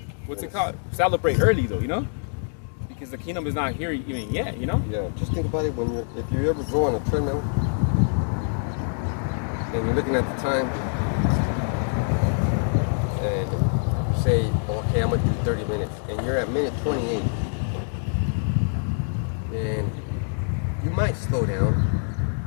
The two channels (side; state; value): right; silent; 62 dB below the other